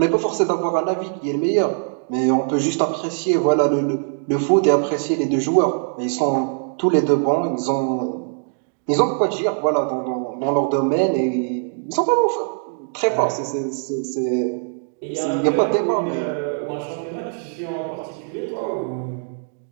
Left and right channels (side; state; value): left; silent; 65 dB below the other